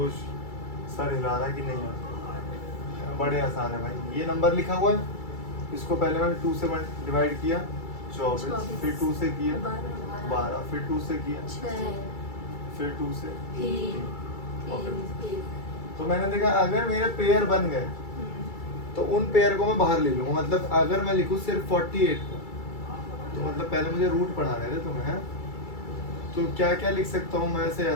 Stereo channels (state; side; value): late; right; 2.3 ms